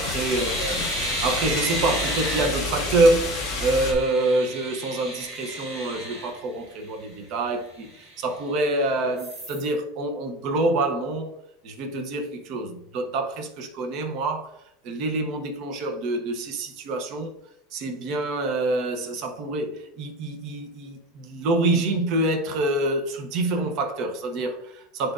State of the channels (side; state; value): both; normal; correlation 0.33